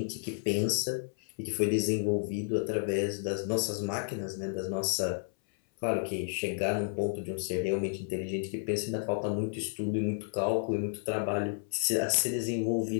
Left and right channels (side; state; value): right; silent; 57 dB below the other